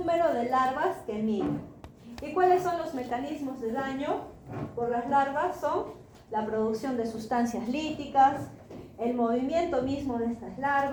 de larvas que migran. ¿Y cuáles son los mecanismos de daño por las larvas? Son la producción de sustancias líticas, el movimiento mismo de estas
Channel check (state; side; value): identical; both; correlation 1.00